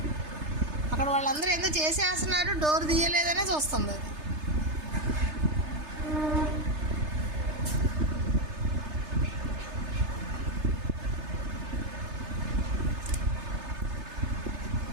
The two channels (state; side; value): late; left; 3.3 ms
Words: అక్కడ వాళ్ళందరూ ఏదో చేసేస్తున్నారు, డోర్ తీయలేదనే చూస్తుంది అది.